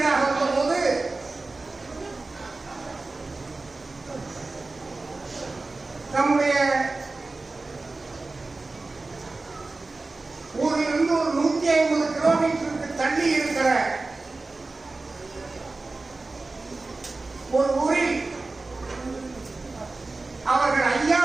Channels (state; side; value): quieter; left; 3.4 dB